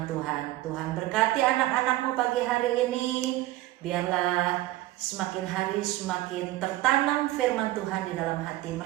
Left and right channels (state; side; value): quieter; left; 16.6 dB